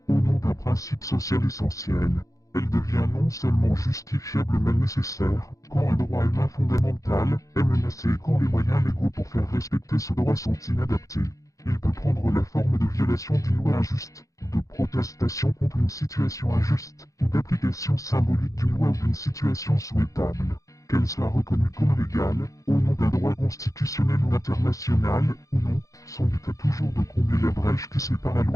au nom d'un principe social essentiel. Elle devient non seulement justifiable mais nécessaire, quand un droit humain fondamental est menacé et quand les moyens légaux pour faire respecter ce droit sont inadaptés. Il peut prendre la forme de violation d'une loi injuste, de protestation contre une situation injuste, ou d'application symbolique d'une loi ou d'une situation souhaitable. Qu'elle soit reconnue comme légale, au nom d'un droit constitutionnel ou international, ou non, son but est toujours de combler la brèche qui sépare la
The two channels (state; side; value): late; right; 0.16 ms